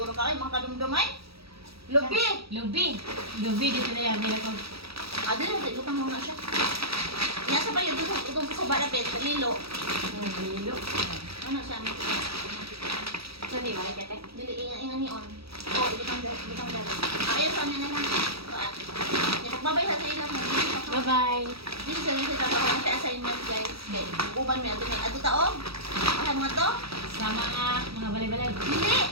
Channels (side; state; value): left; late; 0.77 ms